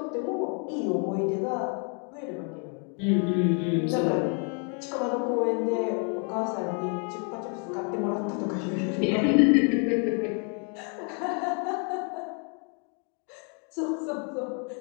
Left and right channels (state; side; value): quieter; right; 39.8 dB